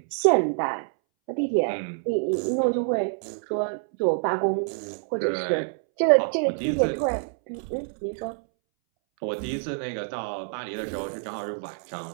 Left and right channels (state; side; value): silent; left; 61 dB below the other